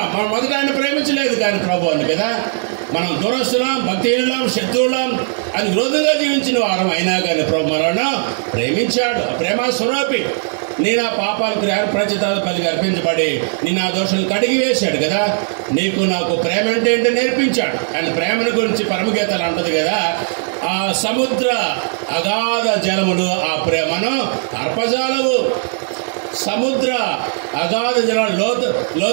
మనం మొదట ఆయన ప్రేమించలేదు కానీ ప్రభు అని కదా. మనం దురస్తులం, భక్తిహీనులం, శత్రువులం అని విరోధంగా జీవించిన వారం అయినా కానీ ప్రభు మనల్ని ప్రేమించాడు. ప్రేమ స్వరూపి. నీ నా పాపాలకు ప్రచితాలు పలికి అర్పించబడి నీ నా దోషాలు కడిగి వేశాడు కదా. నీకు నాకు ప్రేమ అంటే ఏంటో నేర్పించాడు. ఆయన ప్రేమను గురించి పరమగీతాలు అంటది కదా, ఆ సముద్ర అగాధ జలములు ఆ ప్రేమను అర్పజాలవు. సముద్ర అగాధ జలాలు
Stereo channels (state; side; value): silent; left; 68 dB below the other